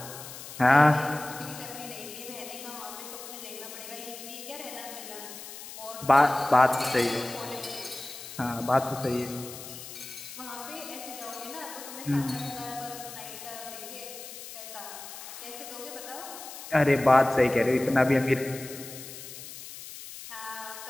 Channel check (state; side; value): noise; left; hiss, 12 dB below the sound